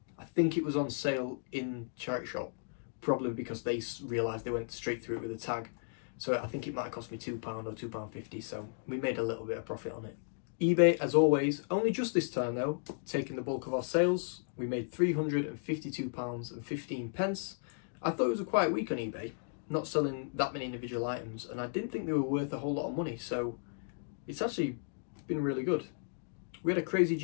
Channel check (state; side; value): silent; right; digital silence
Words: I think it was on sale in charity shop, probably because they realised they went straight through it with a tag. So I think it might have cost me £2 or £2.50, so we made a little bit of profit on it. eBay, as always, only just this time though, taking the bulk of our sales. We made £352.15. I thought it was a quiet week on eBay, not selling that many individual items, and I didn't think they were worth a whole lot of money, so it's actually been really good. We had a crazy